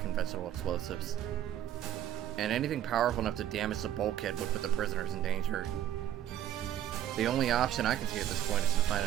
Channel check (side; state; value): left; quieter; 11.2 dB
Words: explosives. And anything powerful enough to damage the bulkhead would put the prisoners in danger. The only option I can see at this point is to find